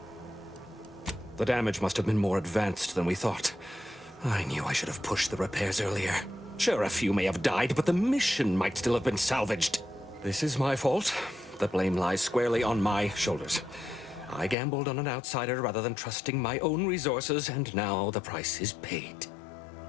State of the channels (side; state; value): right; drops out; at 14.6 s